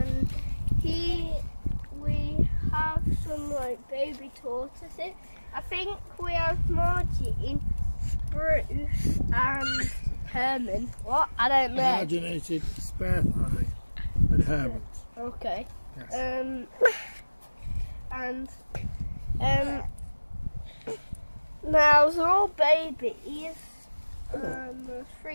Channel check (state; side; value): inverted; both; correlation -1.00